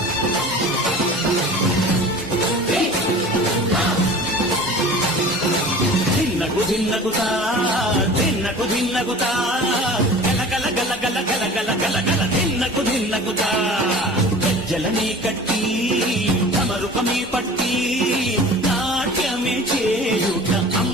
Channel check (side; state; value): both; normal; correlation 0.40